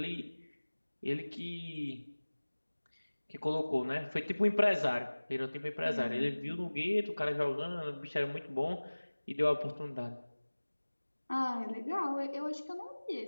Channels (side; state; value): both; inverted; correlation -1.00